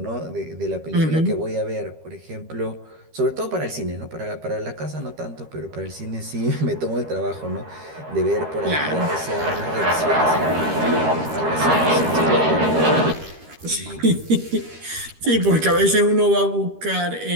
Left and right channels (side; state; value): left; late; 13 ms